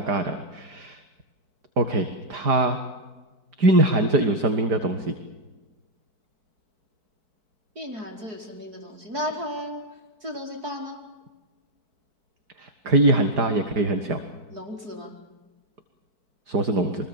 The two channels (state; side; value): late; left; 4.6 ms